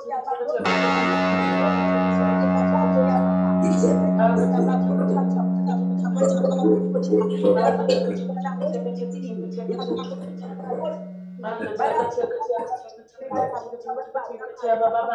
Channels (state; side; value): identical; both; correlation 1.00